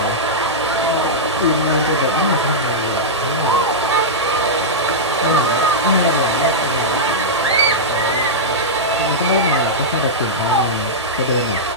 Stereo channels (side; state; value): both; normal; correlation -0.09